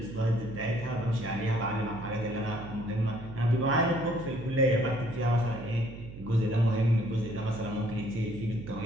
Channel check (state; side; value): noise; right; hum, 13 dB below the sound